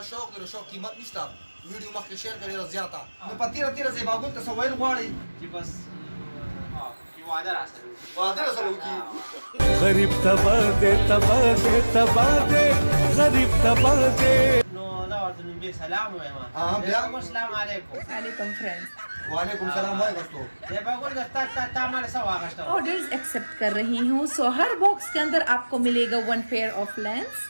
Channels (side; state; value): both; inverted; correlation -1.00